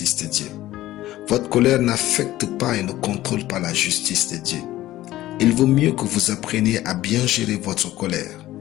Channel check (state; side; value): quieter; right; 15.4 dB